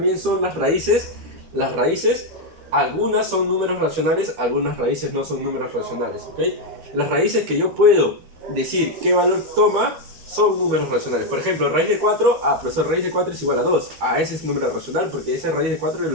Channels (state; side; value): late; left; 13 ms